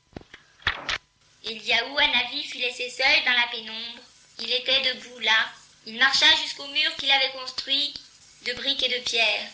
Eliaou Hanavi fut laissé seul dans la pénombre. Il était debout là. Il marcha jusqu'au mur qu'il avait construit de briques et de pierres.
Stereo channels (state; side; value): identical; both; correlation 1.00